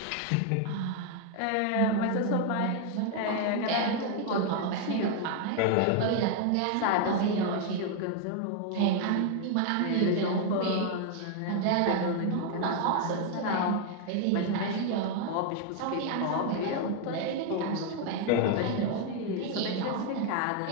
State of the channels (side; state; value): both; different; correlation 0.00